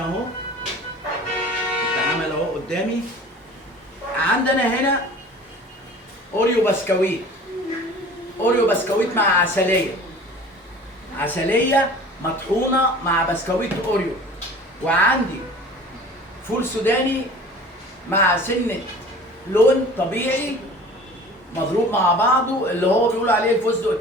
اتعمل اهو قدامي. عندنا هنا اوريو بسكويت، اوريو بسكويت مع عسليه، عسليه مطحونه مع بسكويت اوريو. وعندي فول سوداني مع سنه لون طبيعي مضروب مع بعضه، اللي هو بيقولوا عليه الفستق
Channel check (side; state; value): both; normal; correlation 0.43